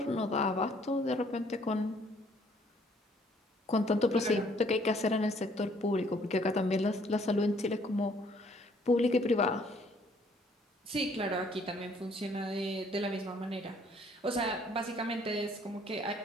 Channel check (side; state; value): both; normal; correlation 0.62